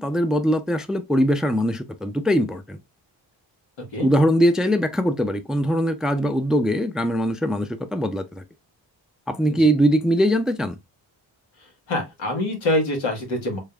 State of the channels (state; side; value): normal; both; correlation 0.74